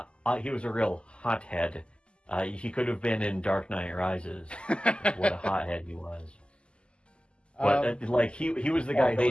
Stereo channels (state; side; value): late; right; 0.051 ms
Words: he was a real hothead. He could have been in Dark Knight Rises. What a hothead he was. But like he was the guy who